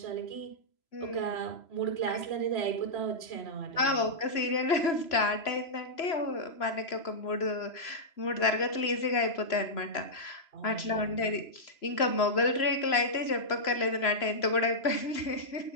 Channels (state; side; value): late; right; 3.0 ms